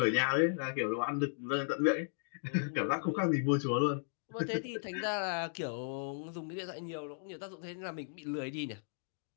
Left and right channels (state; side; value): silent; right; digital silence